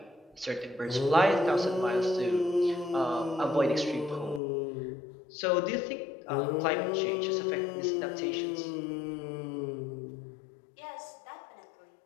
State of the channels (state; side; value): drops out; right; at 4.4 s